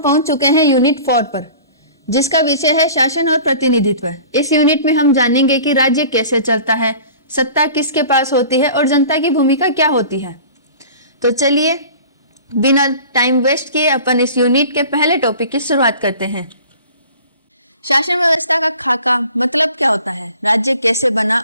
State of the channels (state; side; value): inverted; both; correlation -0.43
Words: चुके हैं यूनिट 4 पर, जिसका विषय है शासन और प्रतिनिधित्व। इस यूनिट में हम जानेंगे कि राज्य कैसे चलता है, सत्ता किसके पास होती है और जनता की भूमिका क्या होती है। तो चलिए बिना टाइम वेस्ट किए अपन इस यूनिट के पहले टॉपिक की शुरुआत करते हैं। शासन व्यवस्था का खाका मतलब क्या होता है, राज्य कैसे बना